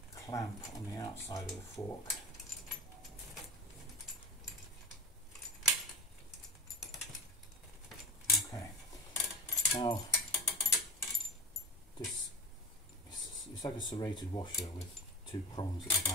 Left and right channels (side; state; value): both; normal; correlation 0.30